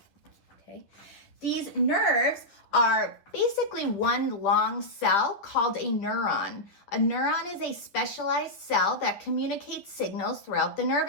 Okay. These nerves are basically one long cell called a neuron. A neuron is a specialized cell that communicates signals throughout the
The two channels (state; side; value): late; right; 10 ms